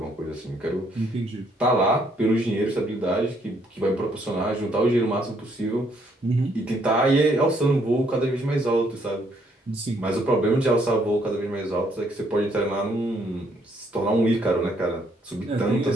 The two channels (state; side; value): normal; both; correlation 0.69